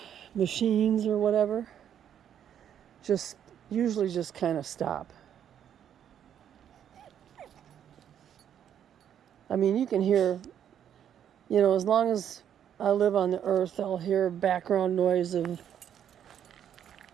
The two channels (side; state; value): left; quieter; 9.5 dB